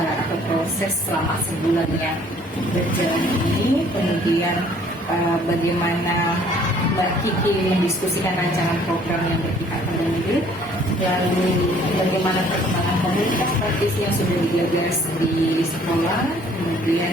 proses selama sebulan yang berjalan ini. Kemudian bagaimana Mbak Kiki mendiskusikan rancangan program yang berpihak pada murid, lalu bagaimana perkembangan komunitas praktisi yang sudah digagas di sekolah,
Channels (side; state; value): both; normal; correlation 0.58